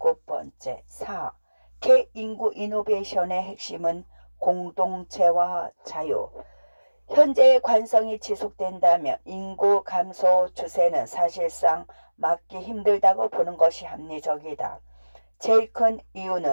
4. 개인구 이노베이션의 핵심은 공동체와 자유. 현재의 관성이 지속된다면 인구 감소 추세는 사실상 막기 힘들다고 보는 것이 합리적이다. 제일 큰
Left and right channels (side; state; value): both; inverted; correlation -1.00